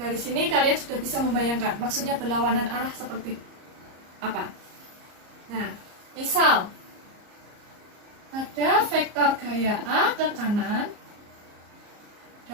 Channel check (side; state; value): left; late; 34 ms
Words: Dari sini kalian sudah bisa membayangkan maksudnya berlawanan arah seperti apa. Nah, misal ada vektor gaya A ke kanan